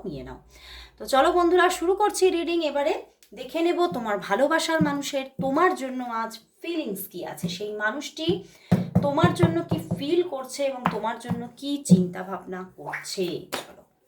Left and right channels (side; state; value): both; identical; correlation 1.00